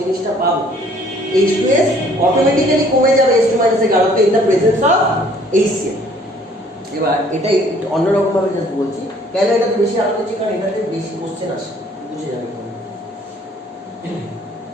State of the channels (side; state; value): both; normal; correlation 0.58